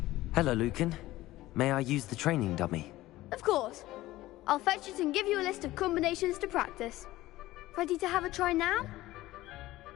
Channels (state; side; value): quieter; right; 16.9 dB